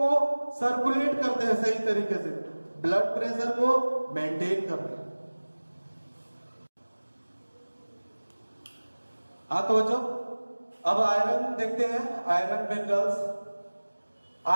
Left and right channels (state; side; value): inverted; both; correlation -1.00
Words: सर्कुलेट करते हैं सही तरीके से, ब्लड प्रेशर को मेंटेन करते हैं। हाँ तो बच्चों अब आयरन देखते हैं, आयरन मिनरल्स।